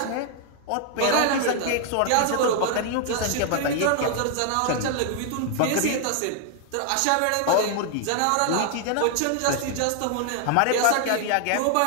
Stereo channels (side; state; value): both; different; correlation 0.00